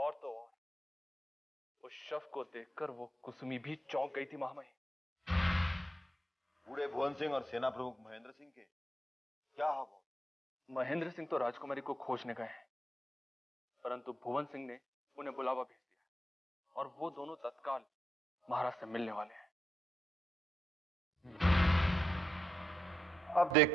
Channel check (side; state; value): both; normal; correlation 0.82